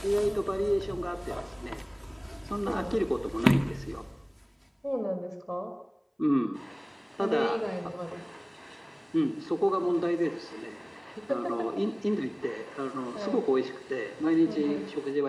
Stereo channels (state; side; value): identical; both; correlation 1.00